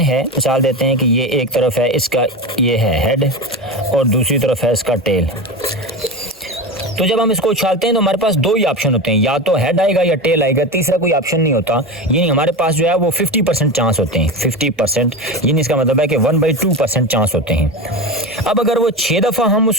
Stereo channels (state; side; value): normal; both; correlation 0.23